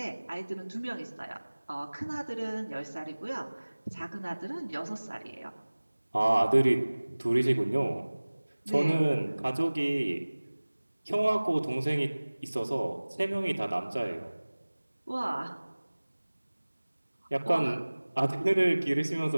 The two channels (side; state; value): both; inverted; correlation -1.00